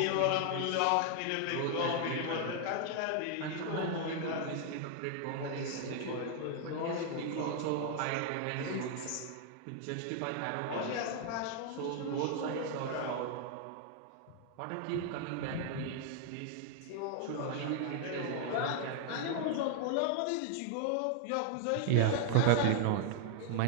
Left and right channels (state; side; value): different; both; correlation 0.00